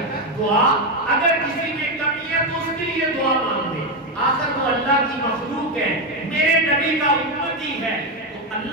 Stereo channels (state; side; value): normal; both; correlation 0.08